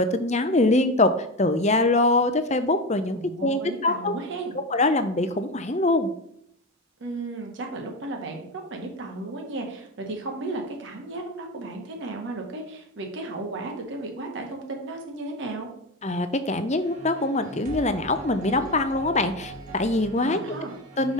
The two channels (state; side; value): normal; both; correlation 0.20